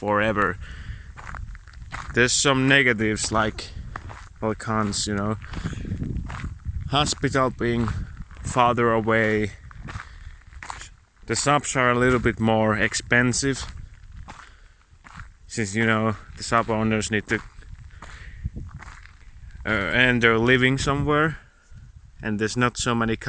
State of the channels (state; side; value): identical; both; correlation 1.00